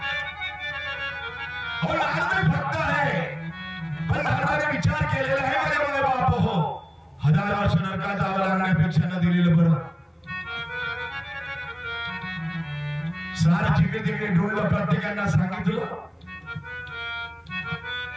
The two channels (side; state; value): both; identical; correlation 1.00